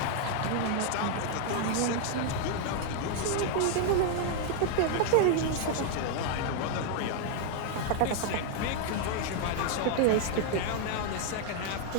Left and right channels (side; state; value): both; different; correlation 0.00